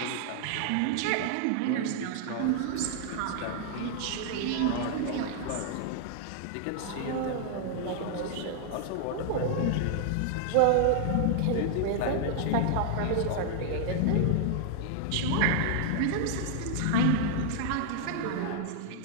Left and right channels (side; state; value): both; different; correlation -0.01